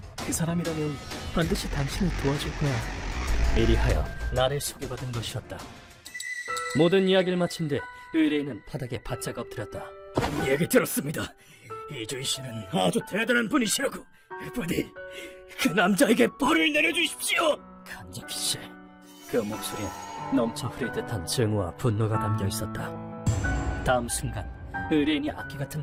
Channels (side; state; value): both; identical; correlation 1.00